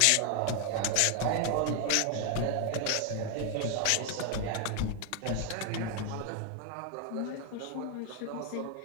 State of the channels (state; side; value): different; both; correlation 0.00